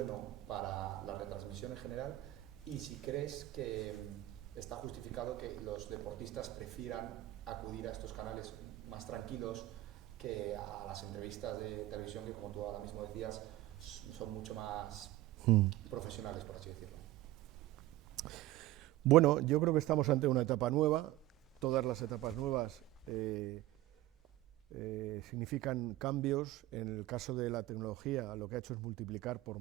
para la retransmisión en general, y si crees que está justificado que los deportistas prefieran acudir a estos canales más tranquilos que a las entrevistas de televisión, que como tú ahora mismo decías, son mucho más profesionales, por así decirlo. Bueno, yo creo que estamos ante una etapa nueva. Todas las etapas nuevas significan cambios. En el caso de la tecnología, lo que ha hecho es multiplicar por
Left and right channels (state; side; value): quieter; left; 16.4 dB